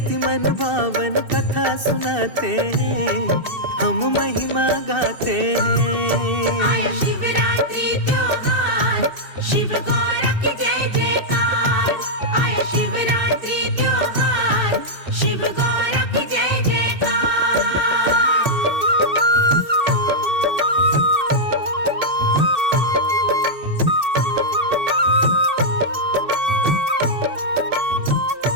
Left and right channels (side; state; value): left; late; 2.6 ms